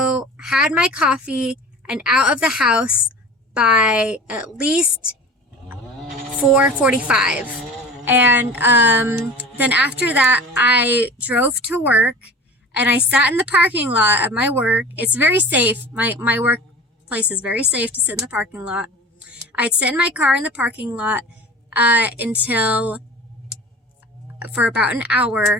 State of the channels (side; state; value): both; normal; correlation 0.38